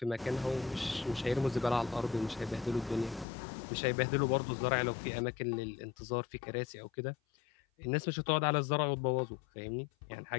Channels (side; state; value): right; drops out; at 3.2 s